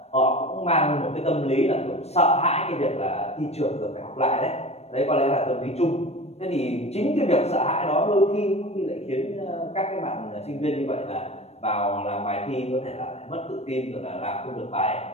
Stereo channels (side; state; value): right; late; 0.31 ms